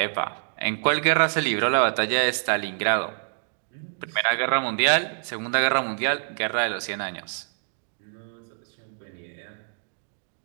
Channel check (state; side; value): silent; left; digital silence